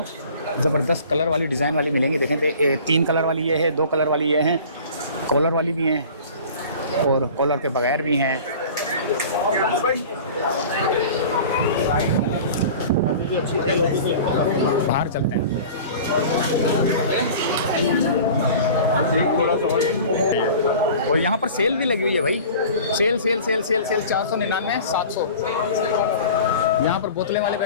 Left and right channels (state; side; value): inverted; both; correlation -0.41